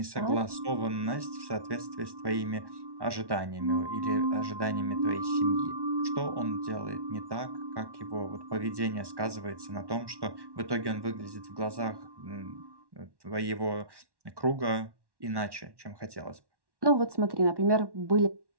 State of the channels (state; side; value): late; left; 1.1 ms